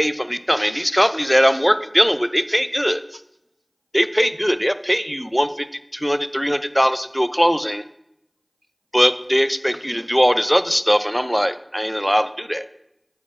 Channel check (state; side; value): identical; both; correlation 1.00